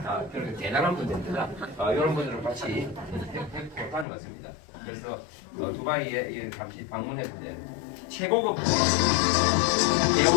그렇게 대단한 분들입니다. 이런 분들을 같이 했고 다녀왔습니다. 그래서 두바이에 잠시 방문했는데 최고급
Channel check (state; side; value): drops out; right; at 4.0 s